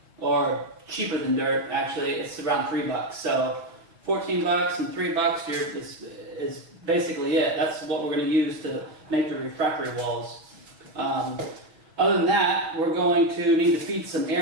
or cheaper than dirt actually. It's around $3. So 14 bucks and $3 is basically it. That's what we're going to use to make the refractory walls. Other than that, we're going to need to feed some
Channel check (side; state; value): left; late; 5.8 ms